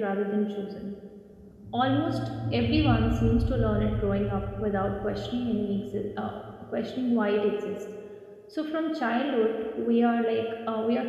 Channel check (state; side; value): identical; both; correlation 1.00